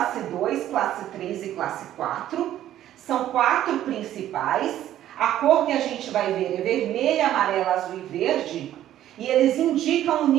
2, classe 3 e classe 4. São 4 principais. A cor que a gente vai ver é vermelha, amarela, azul e verde. E eles indicam o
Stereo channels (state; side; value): quieter; left; 12.3 dB